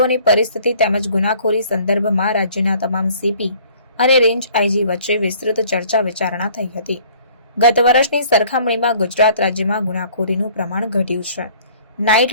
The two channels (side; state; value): both; inverted; correlation -0.55